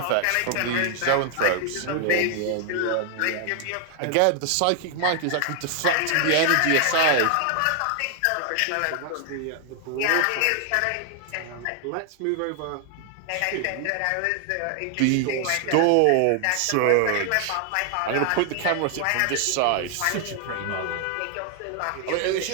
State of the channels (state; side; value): different; both; correlation 0.00